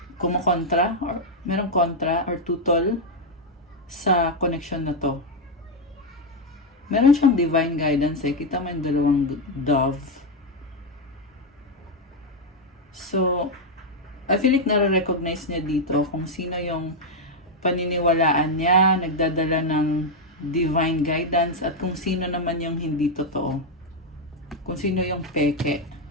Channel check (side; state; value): both; normal; correlation 0.02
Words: kumukontra, or merong kontra, or tutol sa connection na to. Meron siyang divine guidance eh. Kita mo yung dalawang dove. So, I feel like nare-recognize niya dito kung sino yung paniniwalaan niya, nagdadala ng divine guidance, at kung sino naman yung hindi totoo. Kung sino yung peke.